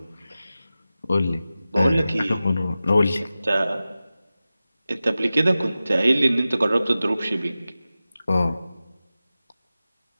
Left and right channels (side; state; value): both; inverted; correlation -0.95